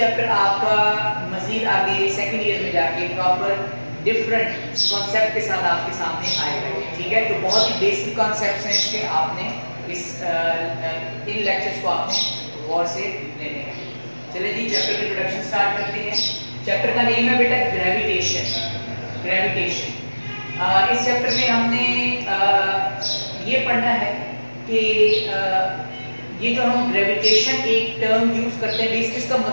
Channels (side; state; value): both; inverted; correlation -1.00